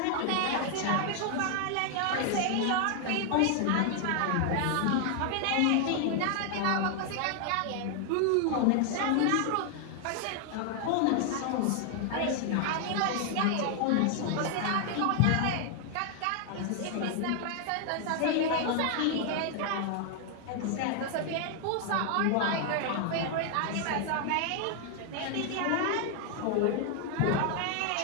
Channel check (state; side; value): different; both; correlation 0.00